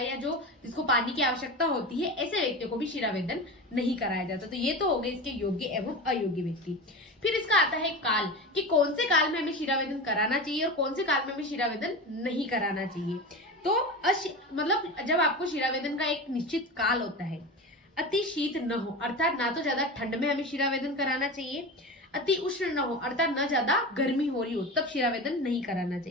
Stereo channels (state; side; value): normal; both; correlation 0.27